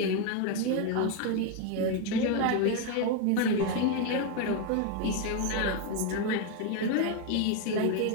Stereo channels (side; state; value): both; different; correlation 0.02